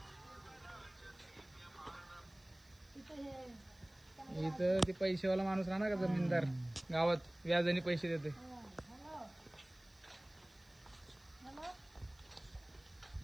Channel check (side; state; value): right; noise; hiss, 30 dB below the sound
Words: इथं ते पैसेवाला माणूस राहणार का जमीनदार गावात व्याजाने पैसे देते.